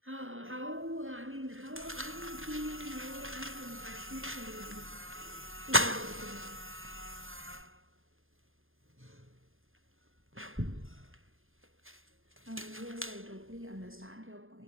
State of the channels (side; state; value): left; late; 0.59 ms